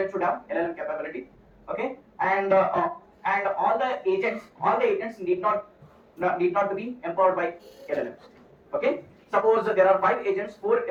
should have LLM capability. Okay, and all the agents need not to be empowered by LLMs. Okay, suppose there are 5 agents,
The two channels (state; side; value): identical; both; correlation 1.00